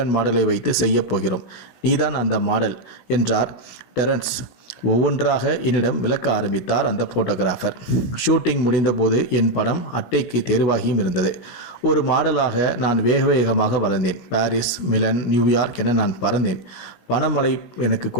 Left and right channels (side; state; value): right; late; 16 ms